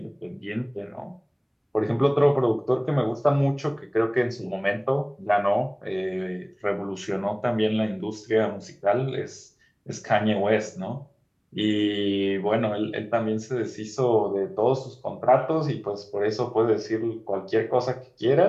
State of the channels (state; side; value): identical; both; correlation 1.00